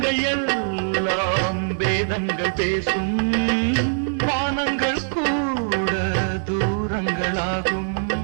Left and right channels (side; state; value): left; silent; digital silence